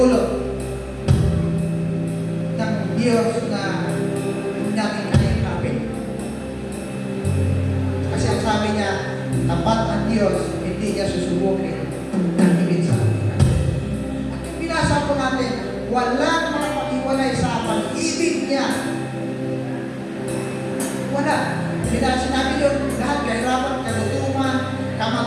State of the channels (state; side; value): identical; both; correlation 1.00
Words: ng Diyos na hindi natin kayang. Kasi ang sabi niya, tapat ang Diyos, hindi niya susubukin ng higit sa atin. At yung binasa po natin, walang makapag-iwalay sa pag-ibig niya. Wala. Sinabi yun, lahat kahirapan, kalutuman,